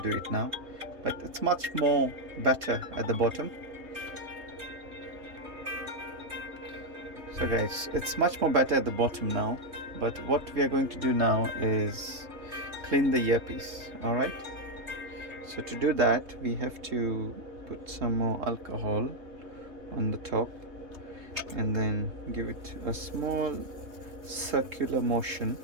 do it now. But it's much more better at the bottom. So guys, it's much more better at the bottom now, but what we are going to do now is clean the earpiece. Alright, so to do that we have to put some more alcohol on the top and then give it a small circular motion.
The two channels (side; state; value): left; late; 3.3 ms